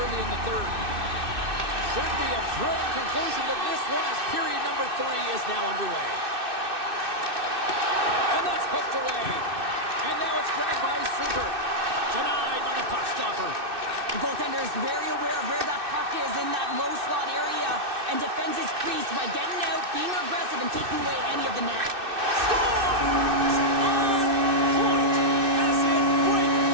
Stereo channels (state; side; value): late; left; 2.6 ms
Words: early in the third. Should be a thrilling conclusion to this one as period number 3 is now underway. And that's hooked away. And now it's grabbed by Super. Denied by the puck stopper. The goaltender is very aware of where that puck is in that low slot area and defends his crease by getting out, being aggressive, and taking away any of the net. Scores! On point! As in